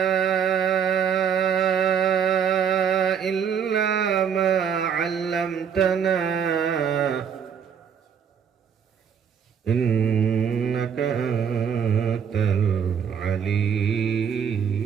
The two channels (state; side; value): quieter; left; 7.5 dB